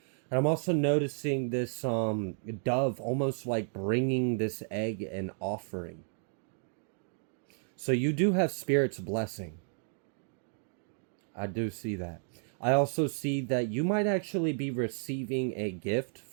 And I'm also noticing this dove almost like bringing this egg an offering. So you do have Spirit's blessing. I do see that. I also see that you might actually be receiving a gift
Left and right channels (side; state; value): left; silent; digital silence